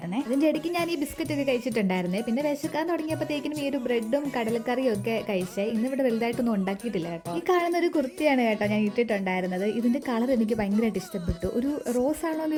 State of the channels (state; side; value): identical; both; correlation 1.00